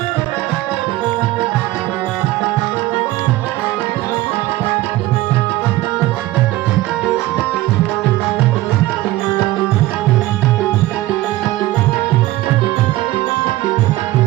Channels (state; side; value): quieter; left; 17.1 dB